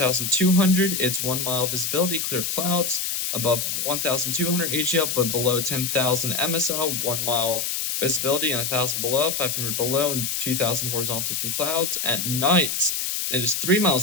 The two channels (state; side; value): noise; left; hiss, 1 dB below the sound